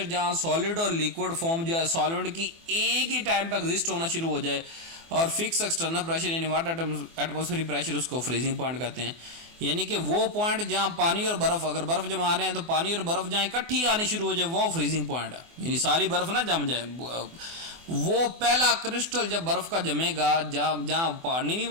जहाँ सॉलिड और लिक्विड फॉर्म जो है सॉल्वेंट की एक ही टाइम पर एग्जिस्ट होना शुरू हो जाए और फिक्स एक्सटर्नल प्रेशर यानी वाटर एटमॉस्फेरिक प्रेशर, उसको फ्रीजिंग पॉइंट कहते हैं। यानी कि वो पॉइंट जहाँ पानी और बर्फ, अगर बर्फ जमा रहे हैं तो पानी और बर्फ जहाँ इकट्ठी आनी शुरू हो जाए वो फ्रीजिंग पॉइंट है, यानी सारी बर्फ ना जम जाए। वो पहला क्रिस्टल जब बर्फ का जमेगा, जहाँ जहाँ पानी भी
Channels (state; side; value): late; left; 24 ms